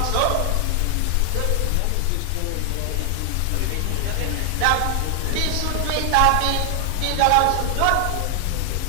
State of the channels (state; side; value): different; both; correlation 0.00